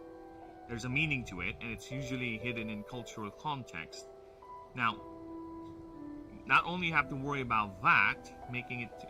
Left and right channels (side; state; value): both; identical; correlation 1.00